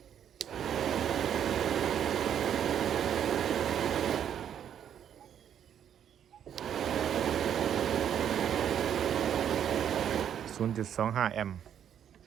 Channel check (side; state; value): left; quieter; 9.3 dB